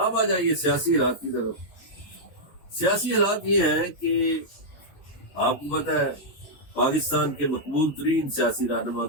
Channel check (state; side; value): late; right; 12 ms